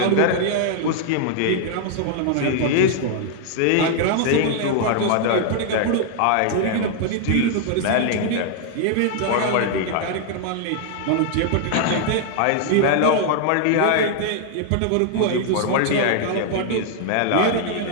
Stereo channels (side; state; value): both; different; correlation 0.00